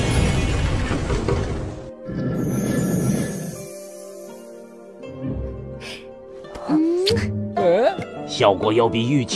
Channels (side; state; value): both; identical; correlation 1.00